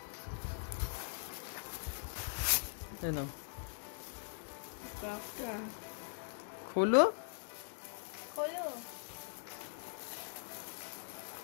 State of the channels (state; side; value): silent; right; digital silence